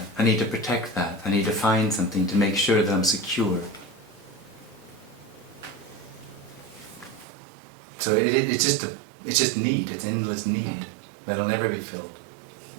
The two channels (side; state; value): left; drops out; at 7.2 s